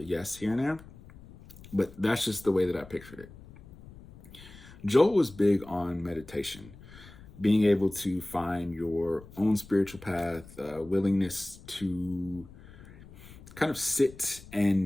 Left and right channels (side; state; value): left; noise; rumble, 19 dB below the sound